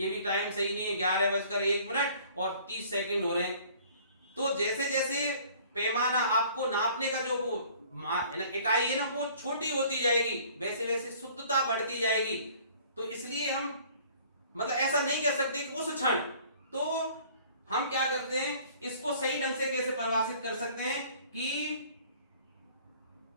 भी टाइम सही नहीं है, 11:01 और 30 सेकंड हो रहे हैं। तो जैसे जैसे पैमाना आपको नापने का जो वो इकाई है ना वो छोटी होती जाएगी, वैसे वैसे शुद्धता बढ़ती जाएगी। तो इसलिए हम मतलब ऐसा नहीं कह सकते कि उस क्षण, तो हम क्या करते हैं इसको सही ढंग से कैसे परिभाषित कर सकते हैं कि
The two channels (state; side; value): inverted; both; correlation -0.53